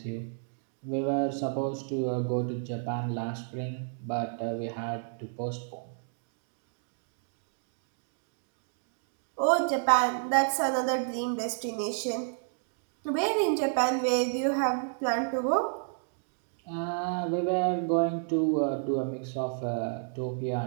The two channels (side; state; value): left; silent; digital silence